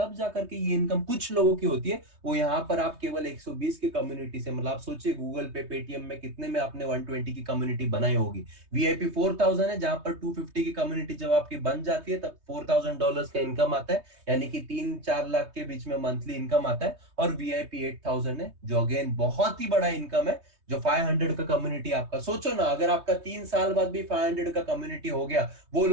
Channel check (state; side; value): late; left; 3.2 ms